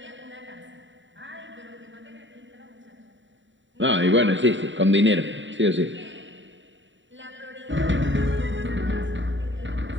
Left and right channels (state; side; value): late; left; 0.54 ms